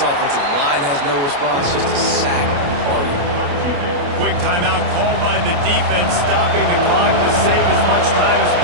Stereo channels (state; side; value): late; left; 28 ms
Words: offensive line has no response. Just a sack party. Quick timeout called by the defense, stopping the clock to save as much time as